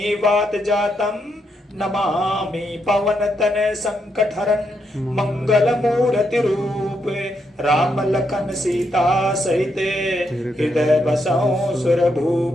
वात जातं नमामि पवन तन संकटहरन मंगल मूर्ति रूप राम लखन सीता सहित हृदय बसौ सुरभूप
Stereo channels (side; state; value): both; normal; correlation 0.79